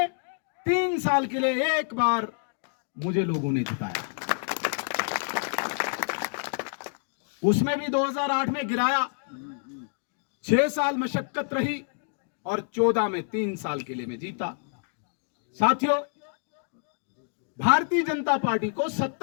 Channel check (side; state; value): right; silent; digital silence